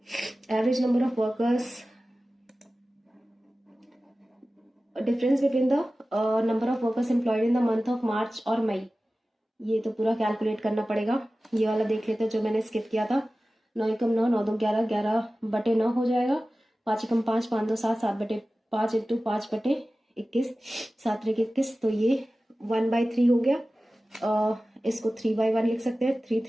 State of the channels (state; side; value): normal; both; correlation 0.96